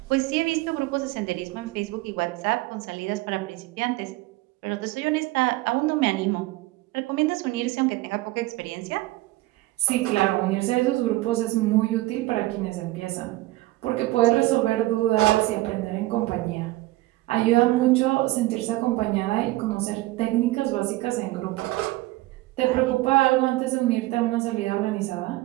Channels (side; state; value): left; quieter; 18.8 dB